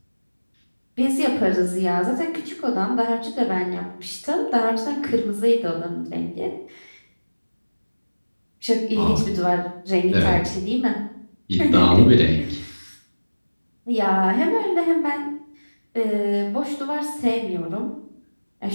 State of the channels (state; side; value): inverted; both; correlation -1.00